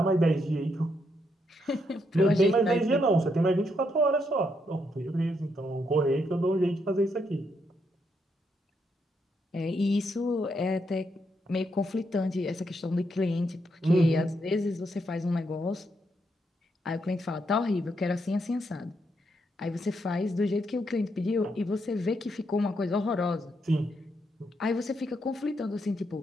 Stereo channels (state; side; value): normal; both; correlation 0.78